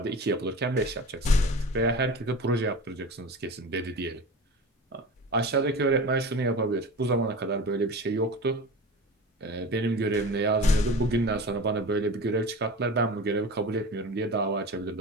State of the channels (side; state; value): both; normal; correlation 0.33